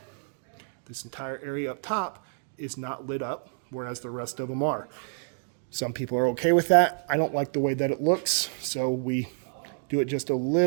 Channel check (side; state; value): left; silent; digital silence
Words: this entire area up top is not lit up, whereas the rest of them are. Some people are okay with that. I don't like the way that it looks, so we do it just a